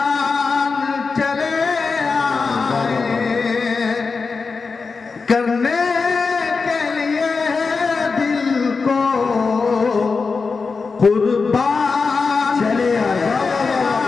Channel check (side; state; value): right; quieter; 4.6 dB